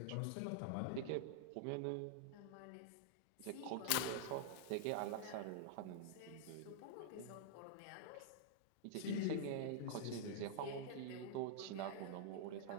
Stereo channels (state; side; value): different; both; correlation -0.01